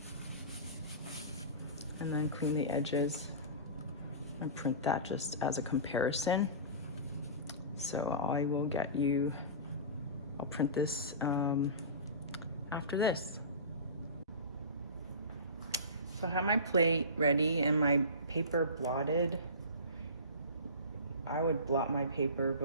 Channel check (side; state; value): both; inverted; correlation -0.32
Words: And then clean the edges and print that just as a comparison. So I will get you, I'll print this after this. So I have my plate ready and my paper blotted. I would blot my